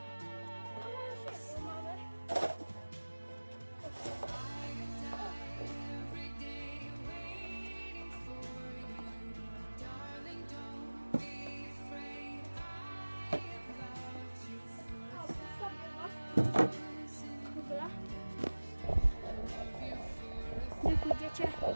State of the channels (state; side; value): inverted; both; correlation -1.00